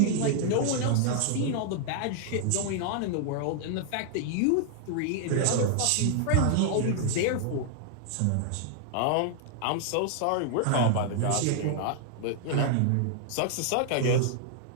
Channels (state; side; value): different; both; correlation -0.01